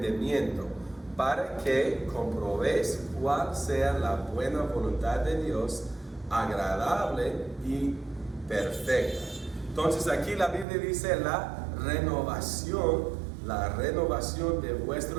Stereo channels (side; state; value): left; drops out; at 10.7 s